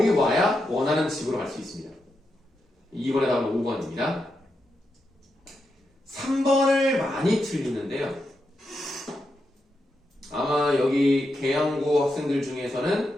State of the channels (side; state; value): both; normal; correlation 0.85